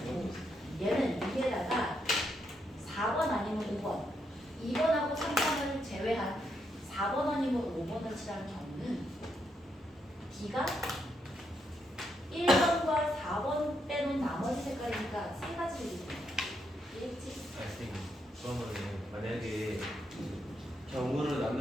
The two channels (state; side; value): normal; both; correlation 0.79